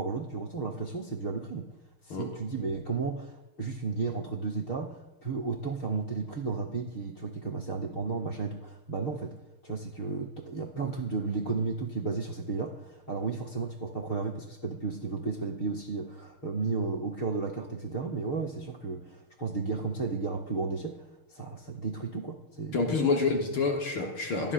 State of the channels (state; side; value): late; right; 6.6 ms